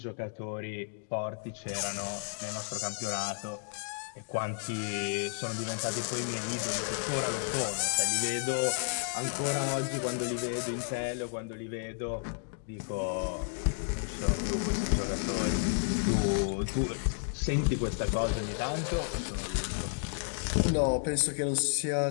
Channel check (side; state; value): right; silent; digital silence